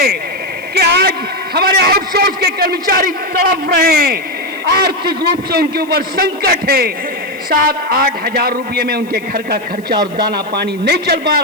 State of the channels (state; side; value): noise; left; hiss, 26 dB below the sound